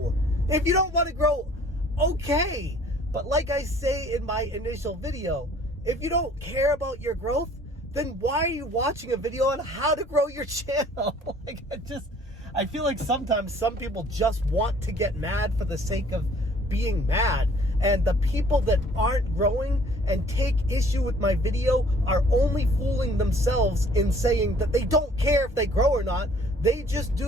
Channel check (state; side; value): normal; both; correlation 0.56